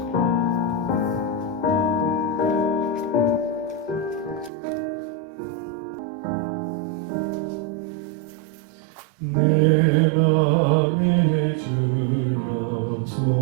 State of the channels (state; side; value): drops out; left; at 4.5 s